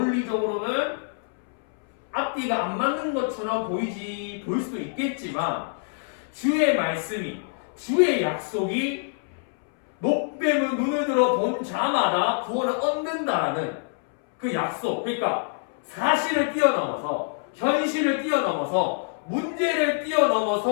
앞뒤가 안 맞는 것처럼 보일 수도 있겠지만 주의 말씀이 주의 약속이 노뱀을 눈을 들어 본 자마다 구원을 얻는다라는 그 약속, 그러니까 사실을 뛰어넘어서 현실을 뛰어넘어서 문제를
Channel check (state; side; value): silent; right; 61 dB below the other